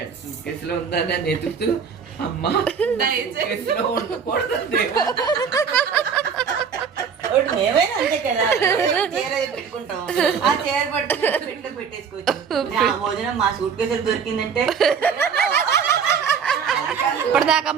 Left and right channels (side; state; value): left; quieter; 6.6 dB